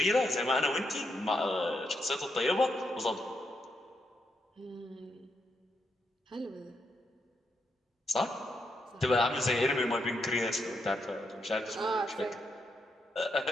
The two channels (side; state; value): both; normal; correlation 0.80